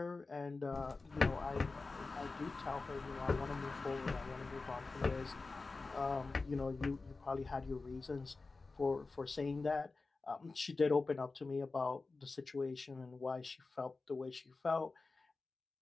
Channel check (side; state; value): right; quieter; 3.8 dB